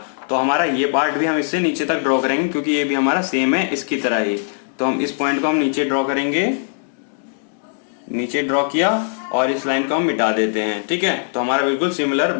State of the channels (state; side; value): silent; right; digital silence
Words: तो हमारा ये पार्ट भी हम इससे नीचे तक ड्रॉ करेंगे, क्योंकि ये भी हमारा सेम है इसकी तरह ही। तो हम इस पॉइंट को हम नीचे ड्रॉ करेंगे, नीचे ड्रॉ किया और इस लाइन को हम मिटा देते हैं, ठीक है। तो हमारा बिल्कुल सिमिलर